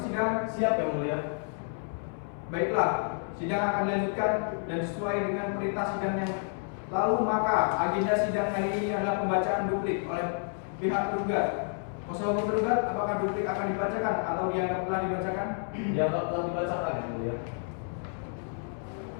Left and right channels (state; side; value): silent; right; 58 dB below the other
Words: Siap yang mulia. Baiklah, sidang akan dilanjutkan dan sesuai dengan perintah sidang yang lalu, maka agenda sidang hari ini adalah pembacaan duplik oleh pihak tergugat. Kuasa hukum tergugat, apakah duplik akan dibacakan atau dianggap telah dibacakan? Dianggap telah dibacakan yang mulia.